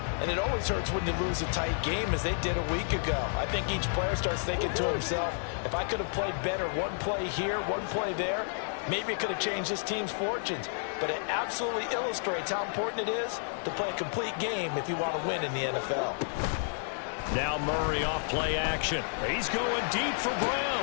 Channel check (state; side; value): silent; right; 57 dB below the other